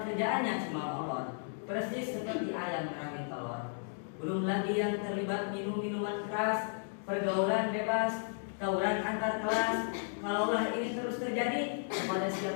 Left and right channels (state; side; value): silent; right; digital silence